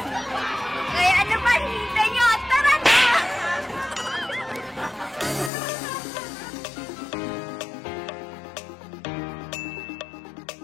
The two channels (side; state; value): right; drops out; at 5.5 s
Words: Kaya ano pa hinihintay nyo? Tara na!